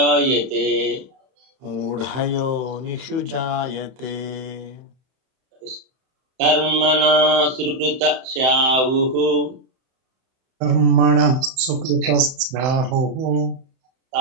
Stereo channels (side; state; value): left; late; 31 ms